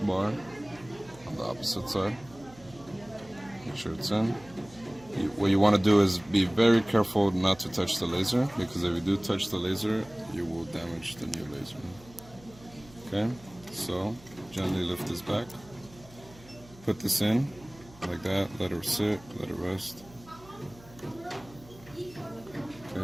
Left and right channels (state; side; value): noise; right; hum, 22 dB below the sound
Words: bar on the opposite side. Make sure it's in. What you want to do is be very careful not to touch the laser, because if you do touch the laser, you will damage the new laser. Okay, so gently lift this back. Put this in, like that, let it sit, let it rest.